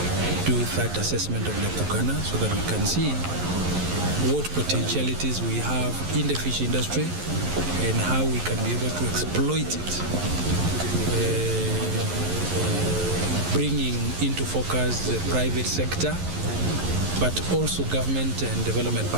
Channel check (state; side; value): late; left; 11 ms